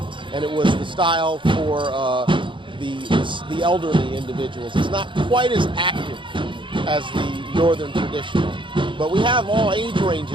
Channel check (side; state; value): left; late; 0.24 ms